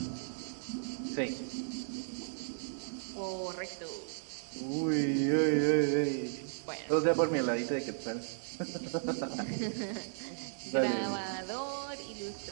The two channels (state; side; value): silent; left; digital silence